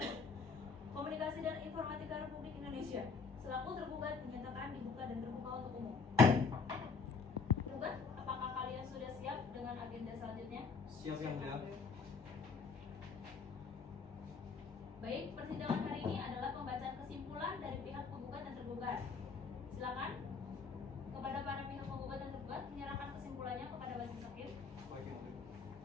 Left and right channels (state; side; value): quieter; right; 4.9 dB